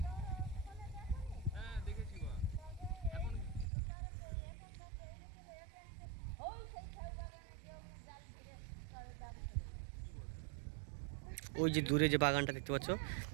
হ্যাঁ দেখেছি বাঘ। এখন ওই যে দূরে যে বাগানটা দেখতে পাচ্ছ,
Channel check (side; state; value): left; drops out; at 3.7 s